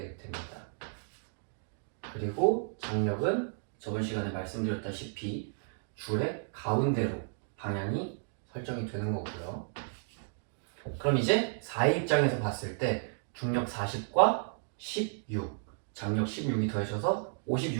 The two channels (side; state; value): left; silent; digital silence